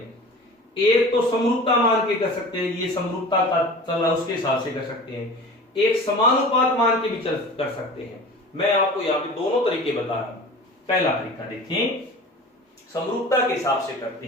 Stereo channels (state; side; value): normal; both; correlation 0.38